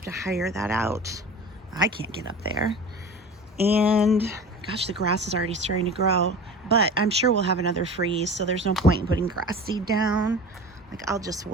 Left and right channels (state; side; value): normal; both; correlation 0.36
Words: to hire that out. I can't get up there. And gosh, the grass is already starting to grow, but I'm sure we'll have another freeze, so there's no point in putting grass seed down. Like, I'll just